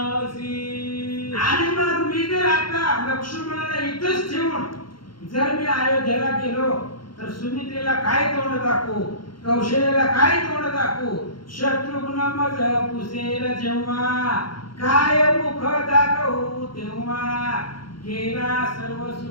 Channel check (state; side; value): late; right; 0.73 ms